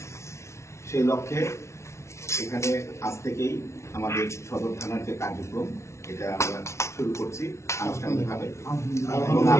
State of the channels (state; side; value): late; right; 0.13 ms